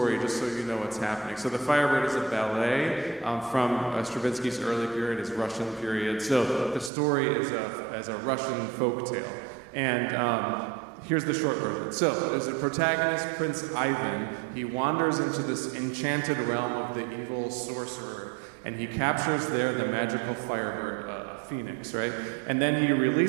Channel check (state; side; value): drops out; left; at 6.9 s